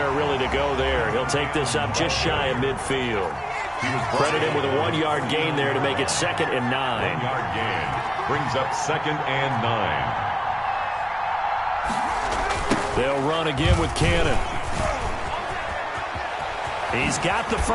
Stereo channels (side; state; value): both; identical; correlation 1.00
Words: really to go there. He'll take this up just shy of midfield. Credited with a 1-yard gain there to make it 2nd and 9. 1-yard gain brings up 2nd and 9. They'll run again with Cannon. He's got the